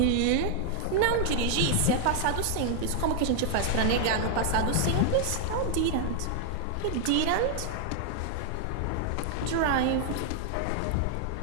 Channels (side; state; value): both; different; correlation 0.00